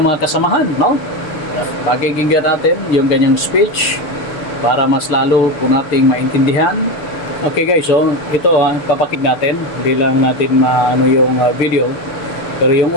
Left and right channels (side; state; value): right; late; 6.9 ms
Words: mga kasamahan, no? Pakikinggan natin yung ganyang speech para mas lalo po nating maintindihan. Okay guys, so ito papakik natin. Hindi lang natin maano yung video, pero yung